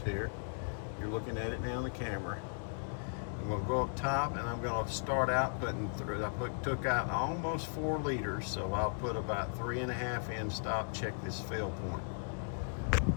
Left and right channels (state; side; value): silent; right; digital silence